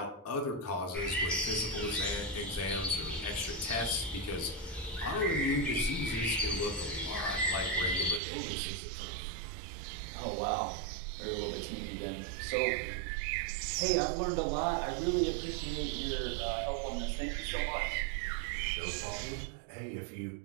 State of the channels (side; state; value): left; drops out; at 8.2 s